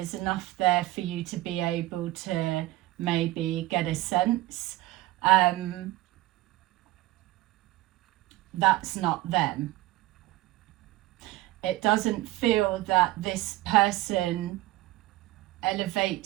enough there for you to be able to maybe get a sense. That's not them. It doesn't feel that this person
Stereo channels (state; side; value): quieter; left; 17.6 dB